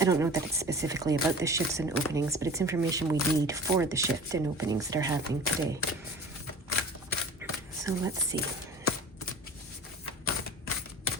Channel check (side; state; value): both; normal; correlation 0.40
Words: don't know that it's specifically about the shifts and openings, but it's information we need for the shift and openings that are happening today. So let's see.